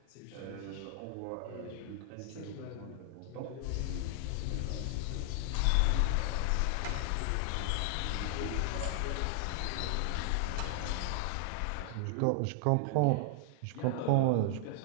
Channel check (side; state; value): both; different; correlation 0.00